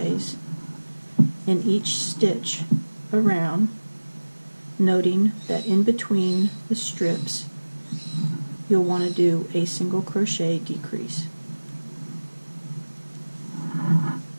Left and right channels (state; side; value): inverted; both; correlation -1.00